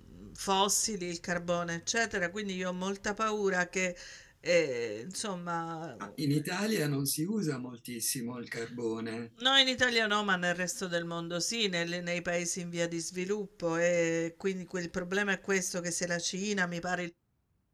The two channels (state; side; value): identical; both; correlation 1.00